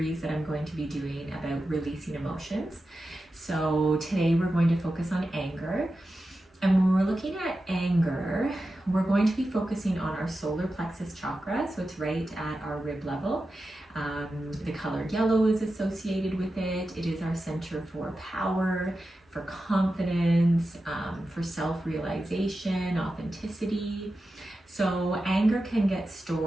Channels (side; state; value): both; normal; correlation 0.92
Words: that I'm going to be doing about releasing emotions. So today we're going to focus on anger. And when we're looking at anger, we're going to be focusing on our solar plexus chakra, so it's right at our rib level. The color yellow is associated with it. It is our center for power, for confidence, for self-realization, authenticity. So anger can get